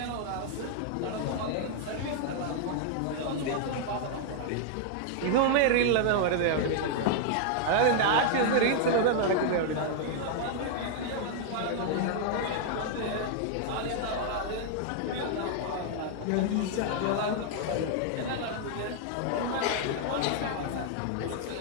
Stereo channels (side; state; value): both; different; correlation 0.00